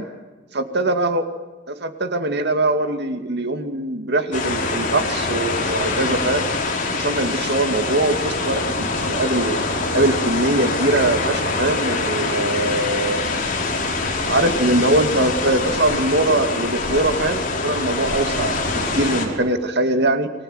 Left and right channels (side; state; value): both; normal; correlation -0.05